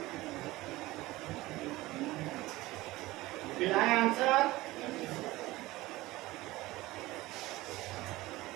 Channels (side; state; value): left; quieter; 18.8 dB